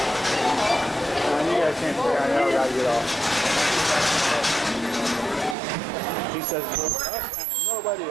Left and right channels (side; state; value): left; drops out; at 5.6 s